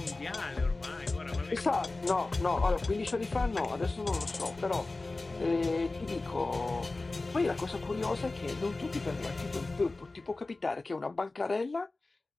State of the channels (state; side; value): quieter; right; 3.3 dB